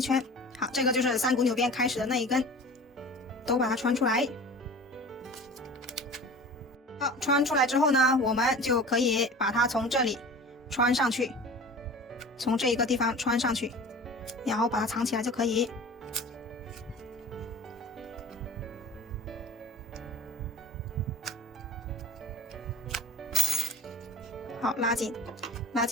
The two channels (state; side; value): normal; both; correlation 0.40